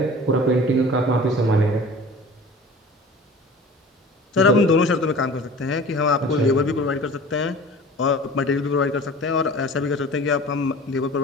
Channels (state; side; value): normal; both; correlation 0.41